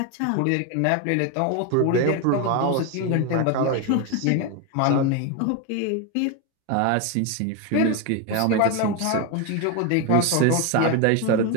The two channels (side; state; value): both; different; correlation 0.02